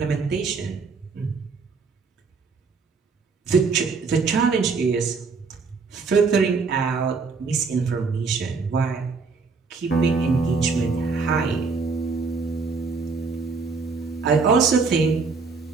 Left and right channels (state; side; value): quieter; left; 4.7 dB